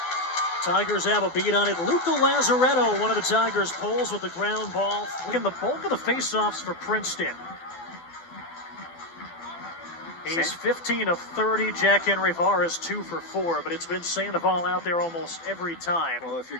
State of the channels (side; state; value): right; late; 12 ms